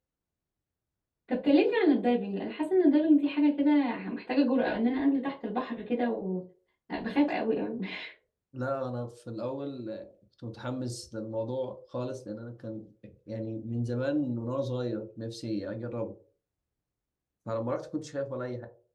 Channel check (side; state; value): both; identical; correlation 1.00